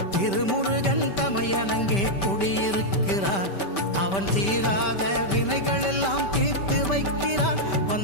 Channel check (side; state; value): right; late; 5.1 ms